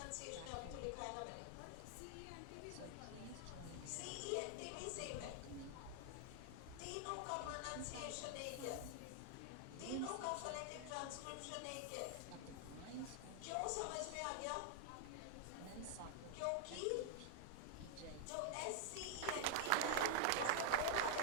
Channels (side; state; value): both; different; correlation 0.00